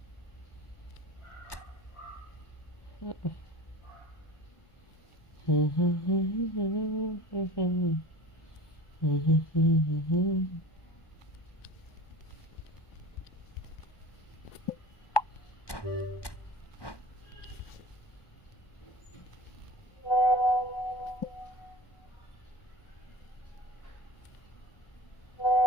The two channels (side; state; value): right; late; 1.1 ms